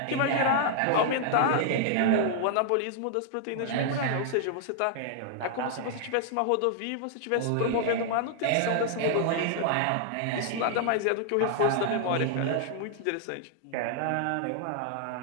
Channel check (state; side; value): different; both; correlation -0.01